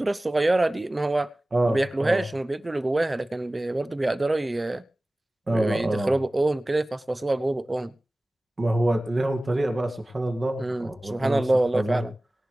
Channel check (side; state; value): both; normal; correlation 0.98